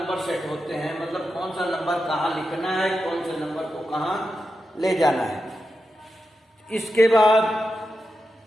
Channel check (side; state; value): both; normal; correlation 0.89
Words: सेट होते हैं, मतलब कौन सा नंबर कहाँ लिखना है, कौन से नंबर को कहाँ ले जाना है। इसके बाद